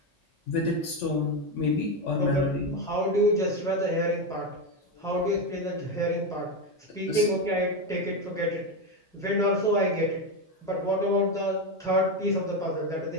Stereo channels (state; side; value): normal; both; correlation 0.12